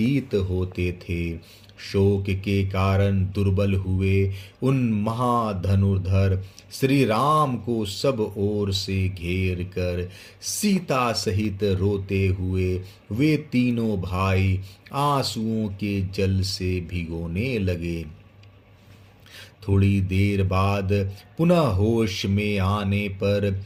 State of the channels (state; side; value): identical; both; correlation 1.00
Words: होते थे। शोक के कारण दुर्बल हुए उन महाधनुर्धर श्री राम को सब ओर से घेर कर सीता सहित रोते हुए वे तीनों भाई आंसुओं के जल से भिगोने लगे। थोड़ी देर बाद पुनः होश में आने पर